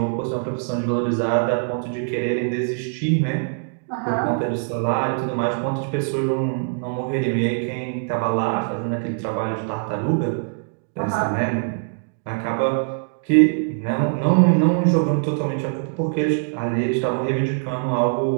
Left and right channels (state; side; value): silent; left; digital silence